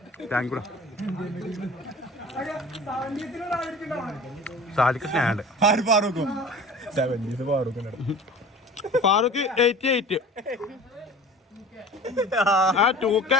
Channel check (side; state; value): both; normal; correlation 0.41